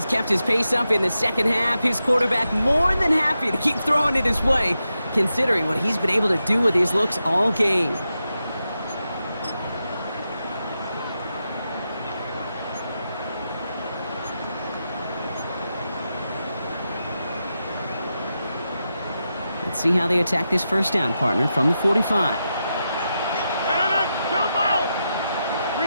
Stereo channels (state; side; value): inverted; both; correlation -0.88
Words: kept his pace up in the second half. His quarterback more than happy to keep throwing it his way, considering what he's been able to do with his looks all game. Let's see how they attack this first down, partner, from the 45.